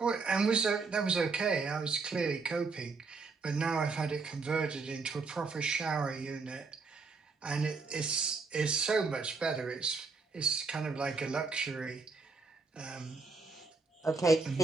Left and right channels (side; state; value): left; quieter; 4.3 dB